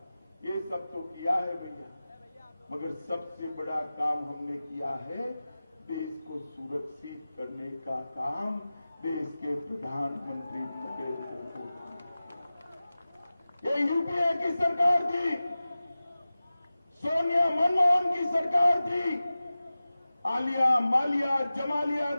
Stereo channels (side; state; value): both; inverted; correlation -0.96